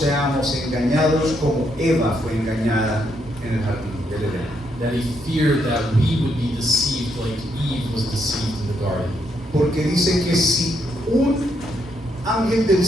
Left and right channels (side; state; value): both; normal; correlation 0.77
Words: engañados como Eva fue engañada en el jardín del Edén. That he feared that we would be deceived like Eve was deceived in the garden. Porque dice que si un ángel del